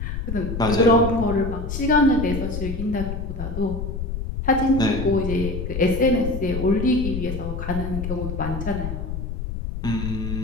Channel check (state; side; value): noise; left; rumble, 5 dB below the sound